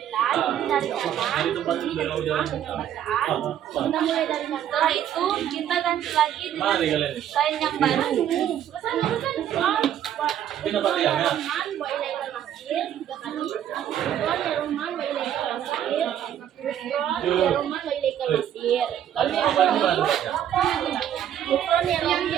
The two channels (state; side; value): quieter; left; 10.4 dB